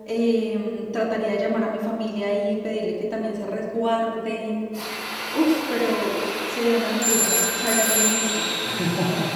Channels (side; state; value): both; identical; correlation 1.00